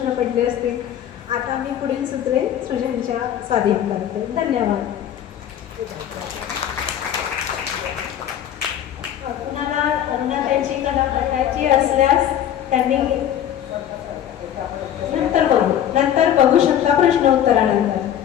पडले असतील. आता मी पुढील सूत्रे सृजनच्या स्वाधीन करते. धन्यवाद. कुणाला अरुणाताईंची कला बघायची असल्यास त्यांनी नंतर बघू शकता प्रश्नोत्तरानंतर.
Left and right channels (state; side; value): quieter; right; 10.5 dB